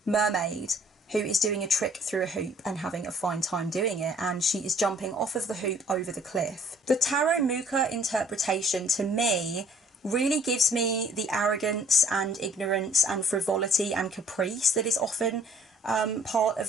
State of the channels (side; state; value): both; normal; correlation 0.57